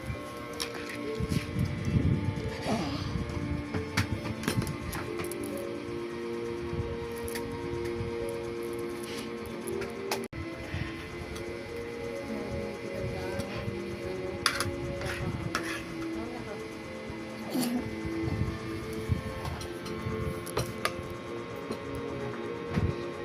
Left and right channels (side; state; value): both; identical; correlation 1.00